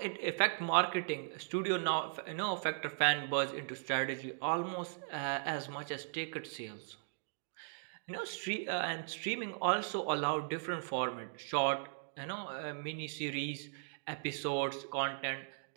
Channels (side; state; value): left; silent; digital silence